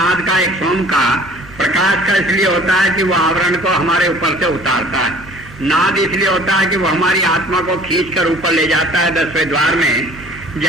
का, एक सोम का। प्रकाश का इसलिए होता है कि वो आवरण को हमारे ऊपर से उतारता है। नाद इसलिए होता है कि वो हमारी आत्मा को खींचकर ऊपर ले जाता है 10वें द्वार में,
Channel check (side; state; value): both; normal; correlation 0.50